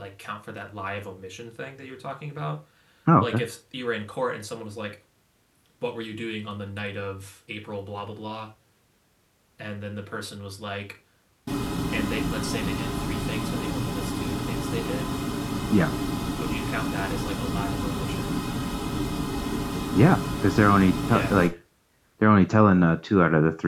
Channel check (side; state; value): both; identical; correlation 1.00